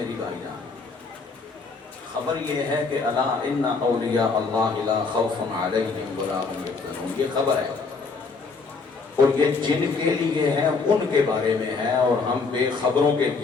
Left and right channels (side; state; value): right; quieter; 4.5 dB